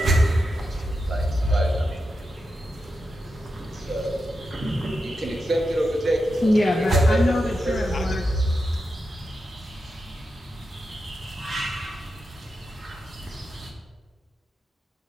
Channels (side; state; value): both; normal; correlation 0.88